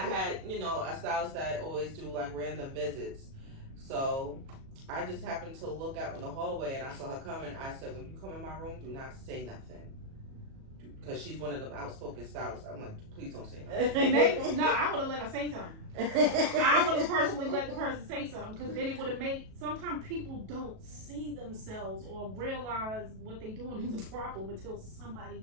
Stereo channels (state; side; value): late; left; 37 ms